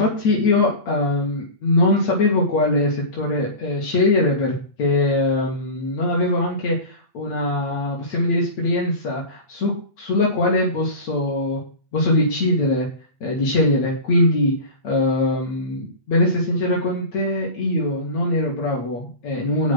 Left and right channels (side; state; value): right; late; 8.8 ms